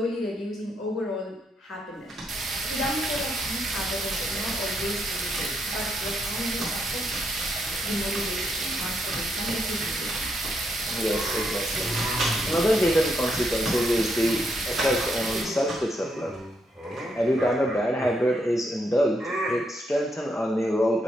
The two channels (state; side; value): normal; both; correlation 0.78